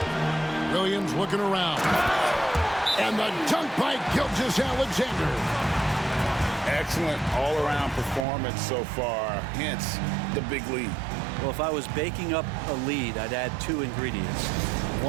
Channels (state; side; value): drops out; left; at 8.2 s